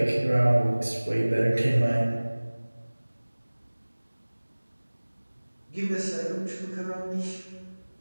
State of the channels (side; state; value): both; inverted; correlation -1.00